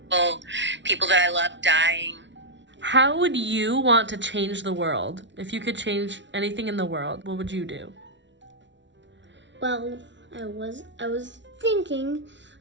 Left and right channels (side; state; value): left; late; 0.53 ms